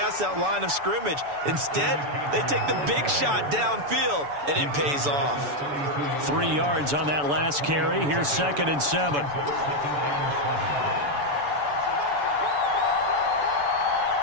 that line of scrimmage. Instead, they take the big shot downfield, and it pays off. 3 yards on that last carry. Here's 2nd and 7.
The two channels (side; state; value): left; late; 6.9 ms